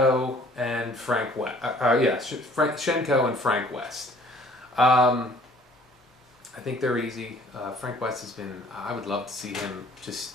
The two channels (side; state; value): both; normal; correlation 0.55